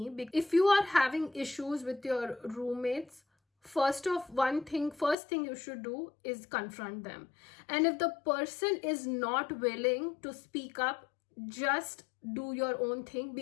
If you are having issues with your roommates, first thing you should do is confront them. And if the person is not willing to speak up, just do your own thing,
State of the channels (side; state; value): right; drops out; at 5.2 s